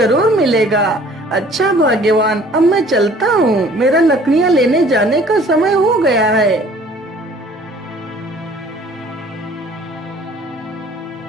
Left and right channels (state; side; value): normal; both; correlation 0.53